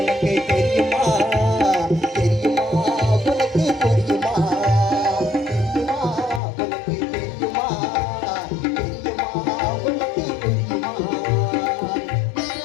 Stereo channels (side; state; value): right; drops out; at 6.4 s